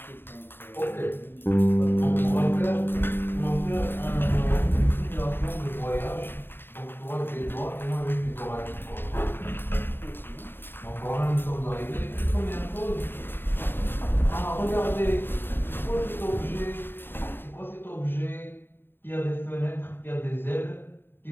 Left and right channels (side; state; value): right; late; 0.10 ms